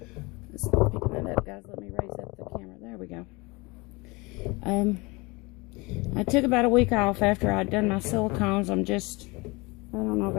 Let's pick that up, guys. Let me raise up the camera. There we go. I took about a week off after I'd done my silicones. I don't know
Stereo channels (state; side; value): quieter; right; 25.3 dB